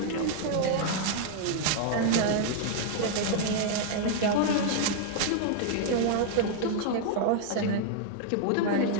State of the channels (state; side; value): different; both; correlation 0.00